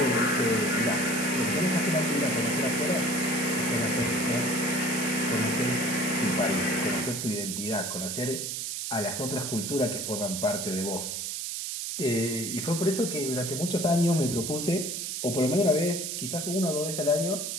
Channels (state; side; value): noise; right; hiss, 4 dB below the sound